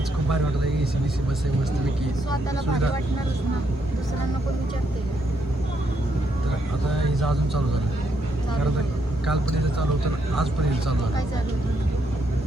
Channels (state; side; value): normal; both; correlation 0.76